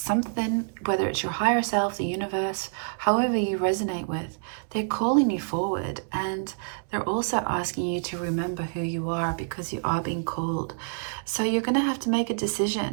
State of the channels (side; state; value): left; silent; 60 dB below the other